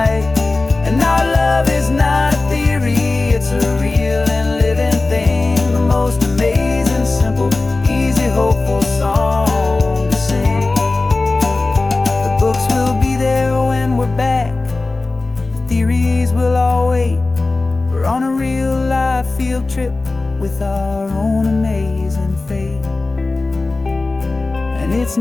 And our love is not a theory, it's a real and living thing. The most amazing, simple, easy, hopeful song to sing. The books will be there when we're back, the theories will all wait. We're on a real life field trip with our own amazing fate. And it's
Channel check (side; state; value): right; quieter; 3.3 dB